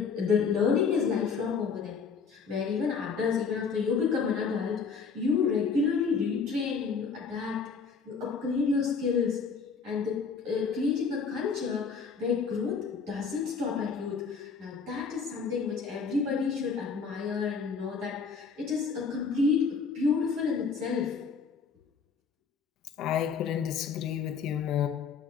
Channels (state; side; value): quieter; right; 5.5 dB